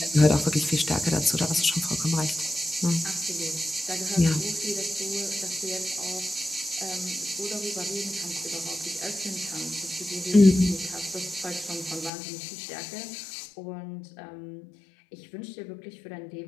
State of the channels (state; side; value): drops out; right; at 12.1 s